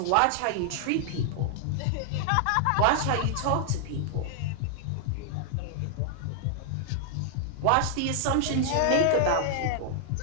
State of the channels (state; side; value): different; both; correlation -0.01